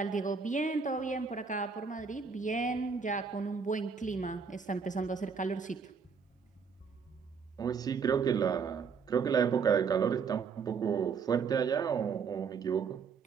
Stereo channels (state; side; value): quieter; left; 5.8 dB